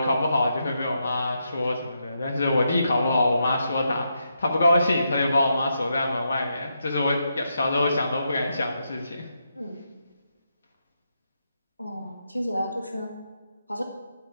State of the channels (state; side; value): inverted; both; correlation -0.83